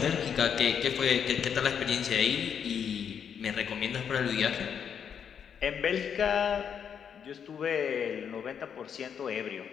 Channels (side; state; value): right; quieter; 7.7 dB